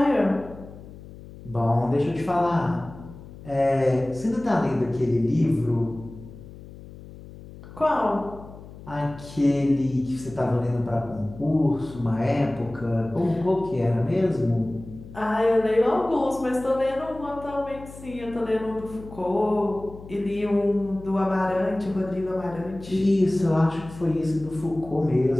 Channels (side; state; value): left; noise; hum, 17 dB below the sound